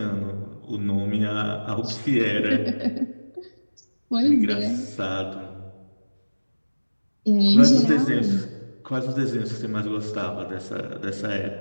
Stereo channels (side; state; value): both; inverted; correlation -1.00